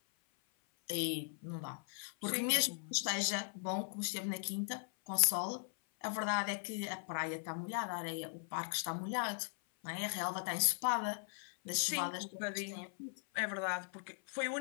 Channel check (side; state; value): right; silent; 52 dB below the other